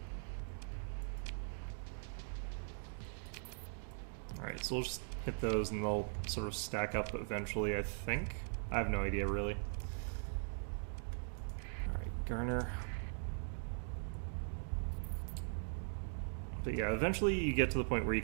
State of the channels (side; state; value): left; silent; digital silence